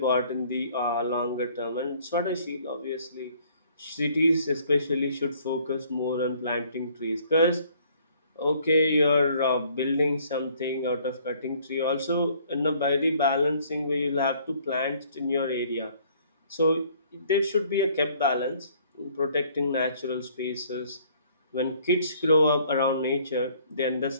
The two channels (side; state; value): both; inverted; correlation -0.60